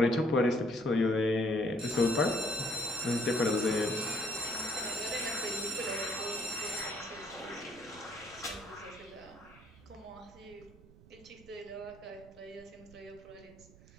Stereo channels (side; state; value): right; noise; rumble, 22 dB below the sound